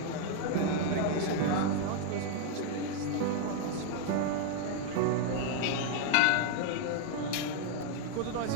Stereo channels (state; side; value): different; both; correlation 0.00